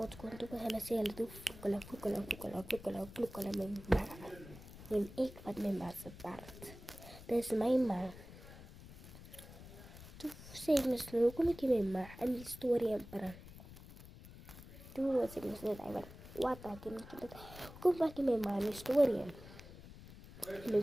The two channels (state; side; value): noise; left; rumble, 16 dB below the sound